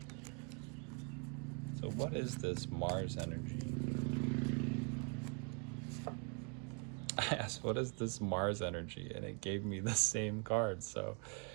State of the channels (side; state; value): left; quieter; 36.7 dB